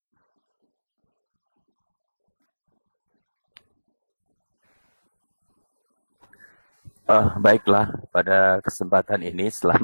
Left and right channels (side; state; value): both; inverted; correlation -1.00